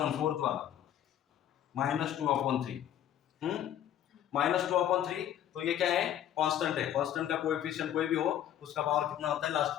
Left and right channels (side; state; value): right; quieter; 10.9 dB